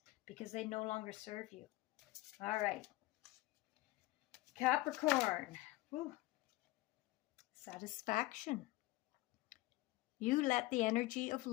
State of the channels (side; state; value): right; quieter; 18.6 dB